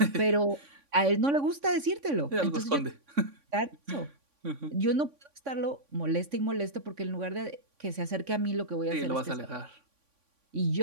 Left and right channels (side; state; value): left; late; 3.5 ms